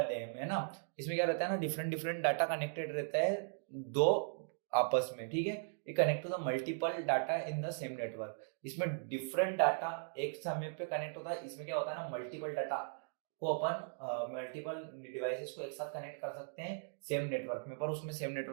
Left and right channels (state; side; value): silent; left; digital silence